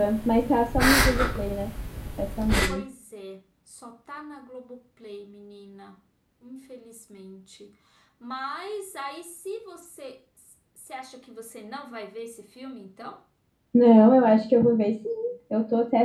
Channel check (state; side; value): identical; both; correlation 1.00